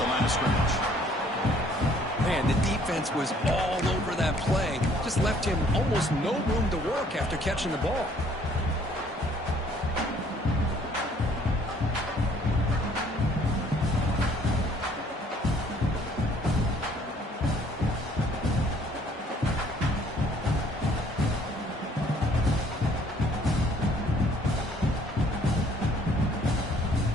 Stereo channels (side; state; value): both; normal; correlation 0.60